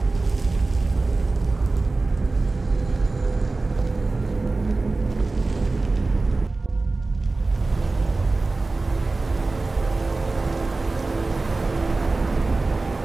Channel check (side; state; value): left; quieter; 3.4 dB